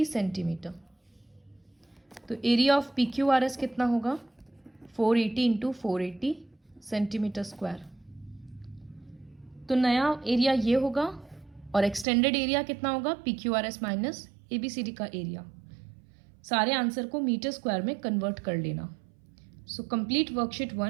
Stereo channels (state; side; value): drops out; left; at 12.1 s